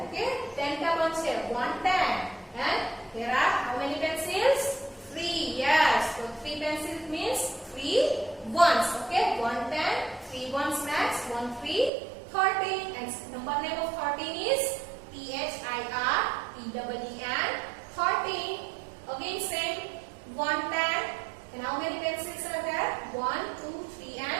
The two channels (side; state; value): left; drops out; at 11.9 s